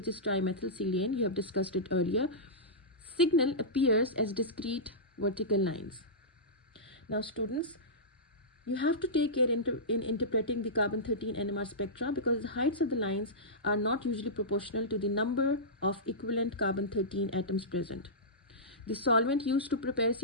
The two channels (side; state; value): both; normal; correlation -0.16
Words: is trimethylsilane. You have discussed it earlier. Signal appears as discrete vertical lines. Now students, you have to take care in interpreting the carbon-13 NMR spectra, because the heights of the lines are not usually proportional to the number of equivalent carbon-13 atoms present. The solvent used to prepare